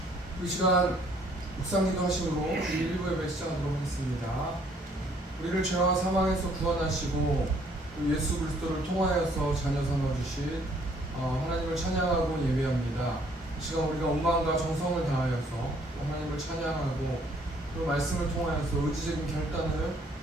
시간 묵상기도 하심으로 1부 예배 시작하도록 하겠습니다. 우리를 죄와 사망에서 구원하시고 예수 그리스도를 통하여서 자녀 삼아주신 하나님을 찬양하고 예배합니다. 이 시간 우리가 온 마음과 정성을 다하여서 하나님을 찬양하고 그 말씀을 통하여서 의지적인 결단을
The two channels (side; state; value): both; normal; correlation 0.63